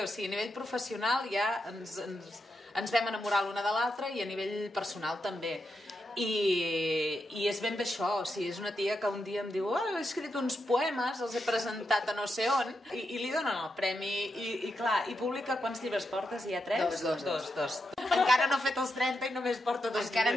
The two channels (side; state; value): both; normal; correlation 0.85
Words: O sigui, a nivell professional ja ens vam enamorar l'una de l'altra i a nivell personal també. I és ben bé això, o sigui, és una tia que un dia em diu he escrit uns poemes, els he presentat a no sé on, i li donen el premi, i clar, i publica quants llibres portes? Hi ha 3? Dos. Encara no he fet els 30 i només porto 2 llibres. Encara